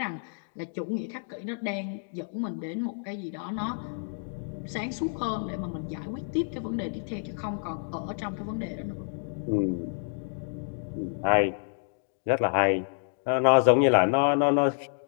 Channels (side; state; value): right; silent; digital silence